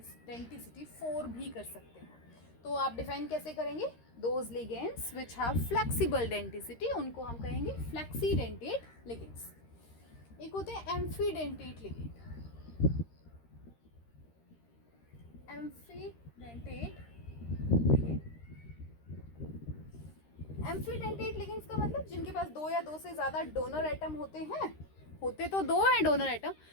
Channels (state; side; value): late; right; 13 ms